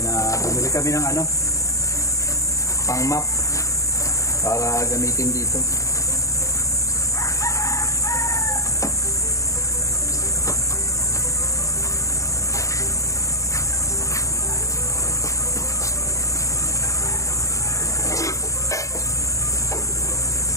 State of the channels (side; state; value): right; late; 0.15 ms